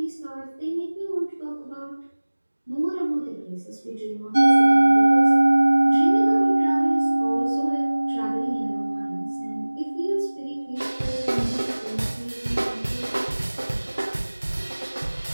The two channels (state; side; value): inverted; both; correlation -1.00